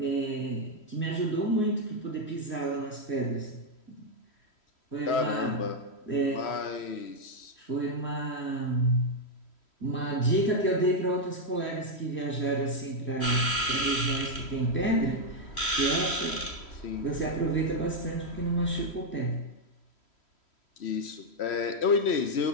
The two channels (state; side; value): late; right; 3.1 ms